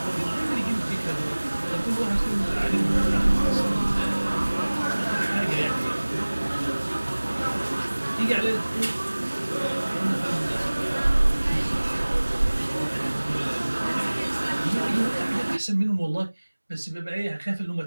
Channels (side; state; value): both; inverted; correlation -1.00